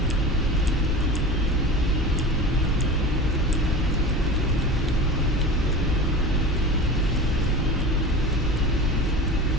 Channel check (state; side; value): normal; both; correlation 0.32